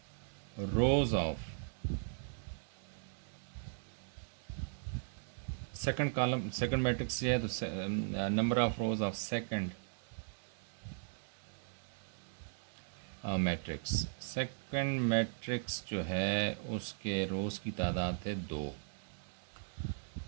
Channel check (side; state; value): left; silent; digital silence